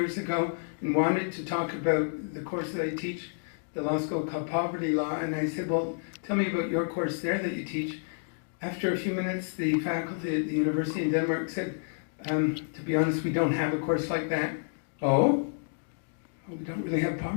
ago, and wanted to talk about the course that I teach, the law school called Poverty Law, and I said, well, tell me about your course there that you teach. After a few minutes, the faculty at the university in Denmark said, to be honest, we don't have a course like that. Oh? Well, we don't really have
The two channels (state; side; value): silent; right; digital silence